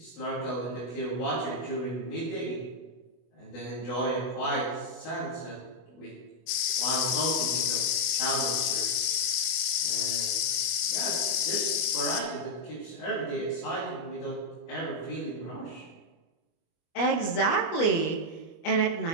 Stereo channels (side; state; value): right; late; 25 ms